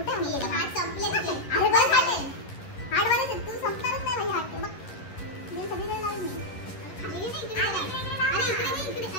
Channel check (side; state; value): right; late; 11 ms